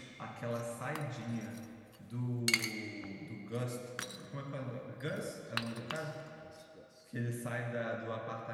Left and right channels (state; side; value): identical; both; correlation 1.00